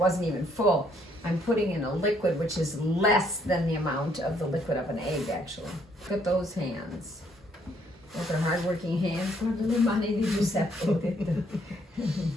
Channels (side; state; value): both; normal; correlation 0.68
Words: even full, I'm putting in a liquid which is less than the amount of the liquid of an egg, actually. Look at those hands. With her hardworking hands. Guarda le mani di Giuseppa.